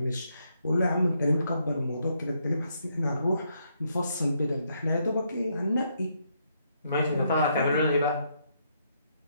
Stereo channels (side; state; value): both; inverted; correlation -0.76